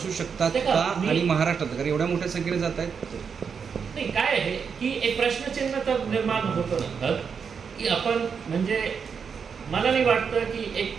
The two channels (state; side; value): quieter; left; 6.3 dB